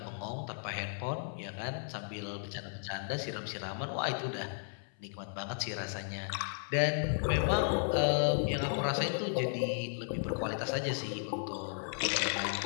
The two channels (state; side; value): silent; right; 55 dB below the other